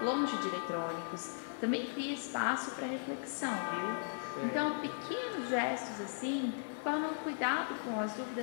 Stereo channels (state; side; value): silent; right; 53 dB below the other